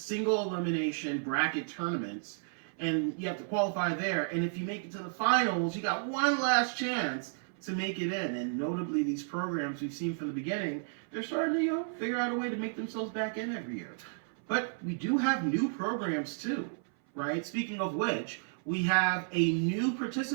elimination bracket tournaments and you have to qualify there. And if you make it to the finals, you got one last chance to make it in. And notably, these programs we've seen from the beginning, they're starting to figure out a way to make themselves back in every year. But we do have new programs too, right? Speaking of which, we have a new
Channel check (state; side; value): silent; left; 56 dB below the other